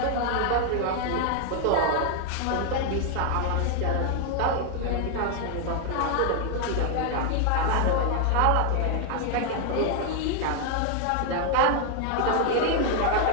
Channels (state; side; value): different; both; correlation 0.00